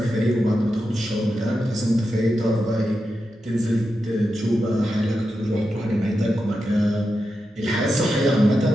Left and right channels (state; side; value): normal; both; correlation 0.89